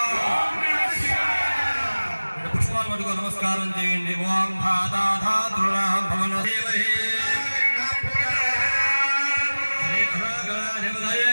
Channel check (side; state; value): both; inverted; correlation -1.00